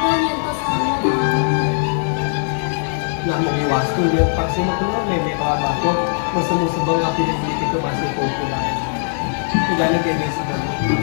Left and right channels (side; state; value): right; silent; digital silence